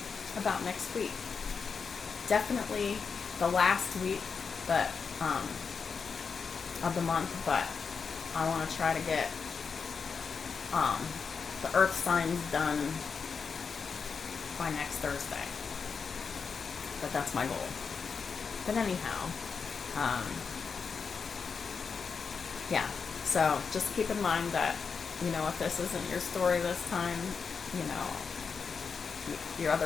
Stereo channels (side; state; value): right; quieter; 5.6 dB